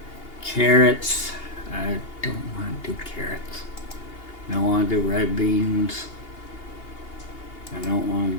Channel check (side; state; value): right; late; 2.8 ms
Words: Carrots. I don't want to do carrots. I don't want to do red beans. I don't want